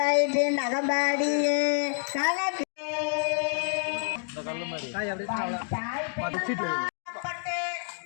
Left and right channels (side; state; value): right; silent; 59 dB below the other